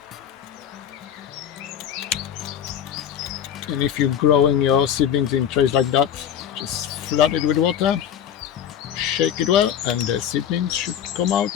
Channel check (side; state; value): right; quieter; 9.5 dB